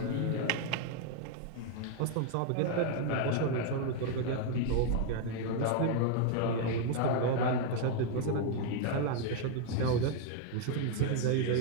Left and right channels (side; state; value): both; different; correlation 0.00